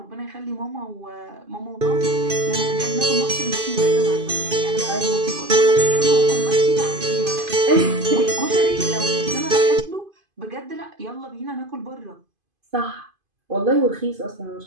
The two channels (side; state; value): left; late; 2.5 ms